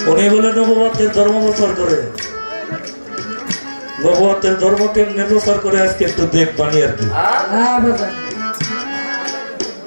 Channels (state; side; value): inverted; both; correlation -1.00